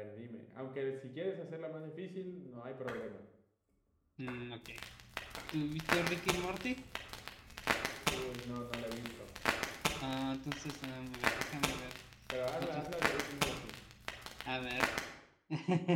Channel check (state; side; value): identical; both; correlation 1.00